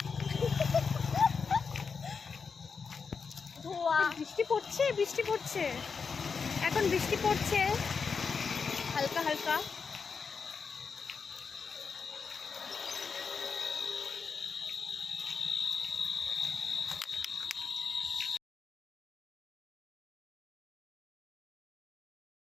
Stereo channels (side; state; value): right; quieter; 5.5 dB